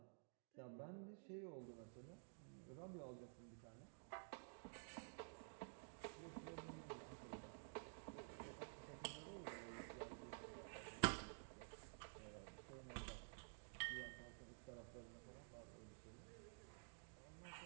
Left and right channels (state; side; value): silent; left; digital silence